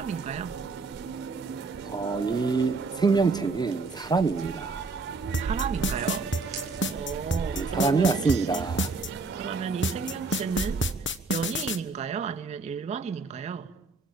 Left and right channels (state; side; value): quieter; left; 3.9 dB